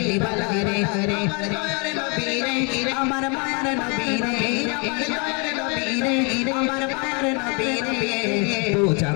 বালা রে। আমার দয়ার নবী রে, আমার মায়ার নবী রে, আমার দয়ার নবী রে, আমার মায়ার নবী রে, দো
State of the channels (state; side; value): quieter; right; 34.2 dB